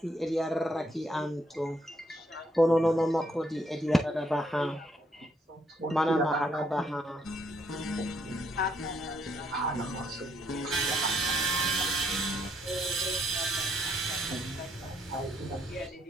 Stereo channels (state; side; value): normal; both; correlation 0.72